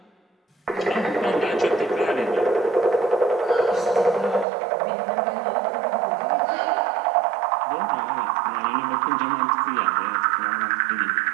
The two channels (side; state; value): left; drops out; at 4.5 s